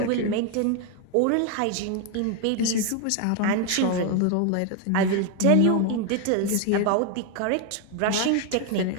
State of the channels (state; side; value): different; both; correlation 0.01